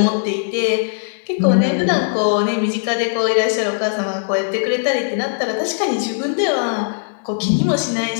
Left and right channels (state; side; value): silent; right; 67 dB below the other